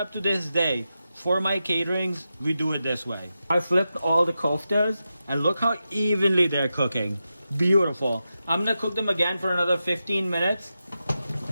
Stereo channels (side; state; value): both; inverted; correlation -0.90